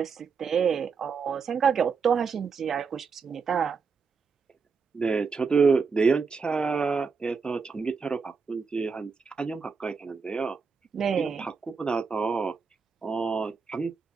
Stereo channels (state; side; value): quieter; left; 5.3 dB